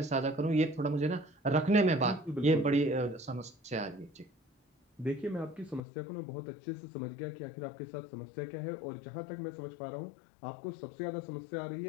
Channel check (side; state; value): right; drops out; at 5.8 s